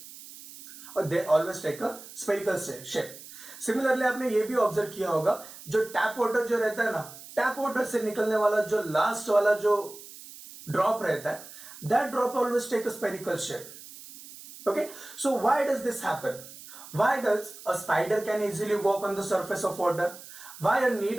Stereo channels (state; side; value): noise; right; hiss, 16 dB below the sound